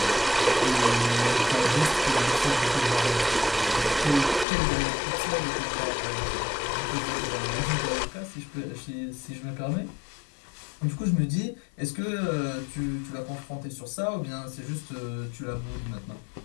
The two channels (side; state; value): right; drops out; at 4.5 s